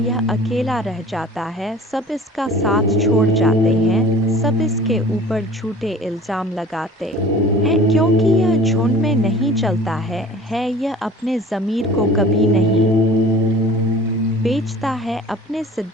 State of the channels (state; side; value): normal; both; correlation 0.45